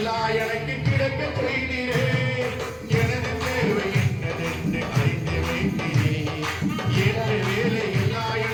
எனக்கு கிடைக்க செய்தீரே. எனது தேவை என்னதென்று அறிந்து வைத்தீரே, ஏற்ற வேலை எல்லாம்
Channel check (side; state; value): both; identical; correlation 1.00